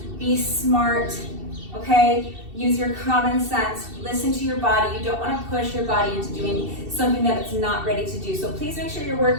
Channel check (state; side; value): late; left; 2.7 ms